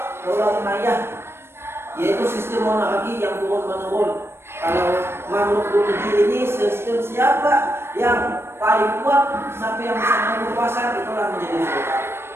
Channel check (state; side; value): late; left; 0.12 ms